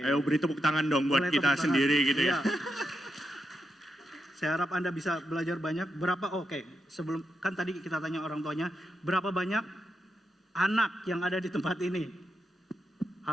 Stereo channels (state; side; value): normal; both; correlation 0.85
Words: Ayo beri tepuk tangan dong buat Boleh kita tepuk tangan. sendiri gitu ya. Iya. Saya harap Anda bisa belajar banyak. Sebelum kan tadi kita tanya orang tuanya, berapa banyak anak yang ada di tempat ini?